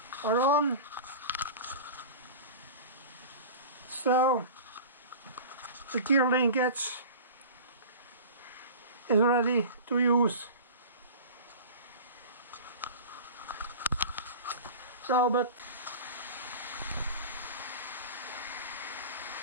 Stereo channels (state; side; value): inverted; both; correlation -0.35